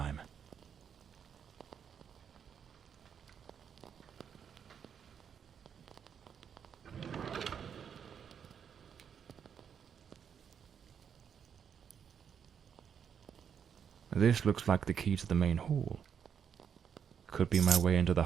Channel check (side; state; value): left; quieter; 7.6 dB